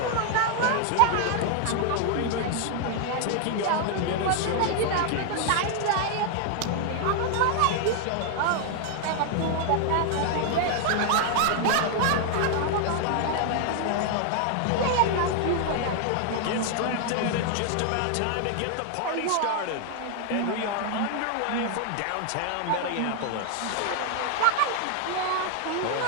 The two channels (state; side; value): different; both; correlation 0.00